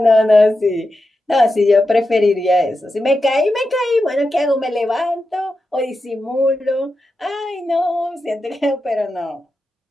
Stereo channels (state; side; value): normal; both; correlation 0.89